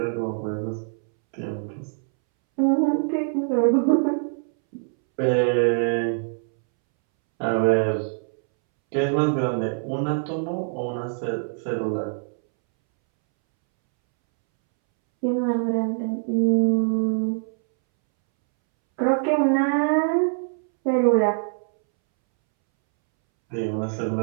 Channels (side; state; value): left; silent; 63 dB below the other